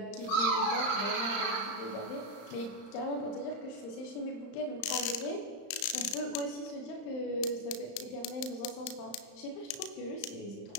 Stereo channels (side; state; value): right; late; 35 ms